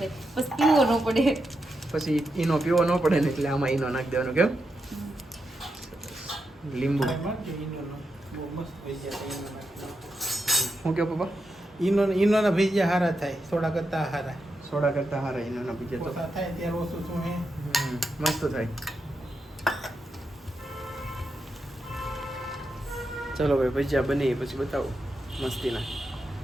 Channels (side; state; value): both; normal; correlation 0.86